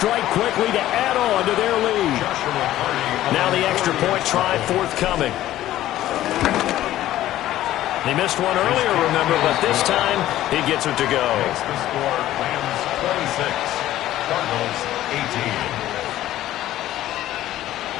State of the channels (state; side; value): quieter; right; 13.9 dB